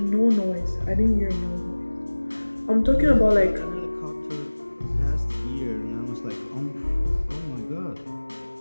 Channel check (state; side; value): inverted; both; correlation -1.00